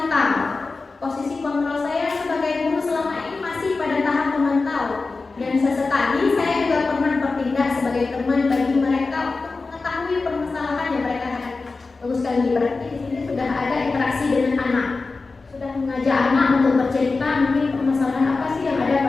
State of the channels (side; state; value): right; quieter; 3.9 dB